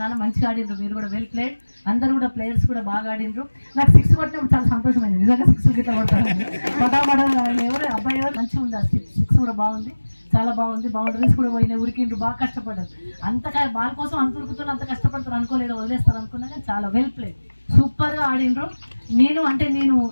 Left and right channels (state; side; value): inverted; both; correlation -1.00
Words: నాన్న, మంచిగా ఆడిండ్రు. మీరు కూడా వెల్ ప్లేడ్. అందరు కూడా ప్లేయర్స్ కూడా బాగా ఆడిండ్రు. నాకు 6 కొట్టినప్పుడు చాలా సంతోషమైంది. నిజంగా 6 గిట్లా కొడతాను. అబ్బాయి ఎవరు మంచిగా ఉంది. ఆ 6 కూడా బాగుంది, చాలా బాగుంది. బౌండరీస్ కూడా పోయినాయి, ఉరికిండ్రు, బాగా కష్టపడ్డారు. బాల్ కోసం అంత ఉరుకుతున్నా, అంత కష్టపడతారు అనుకోలేదు, వదిలేస్తారు అనుకున్నా. కానీ చాలా వెల్ ప్లేడ్, సూపర్గా ఆడిండ్రు. నేను